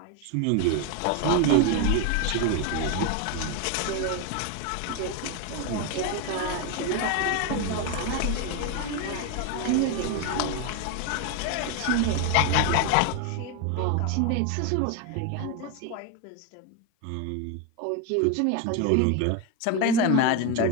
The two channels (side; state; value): both; different; correlation 0.02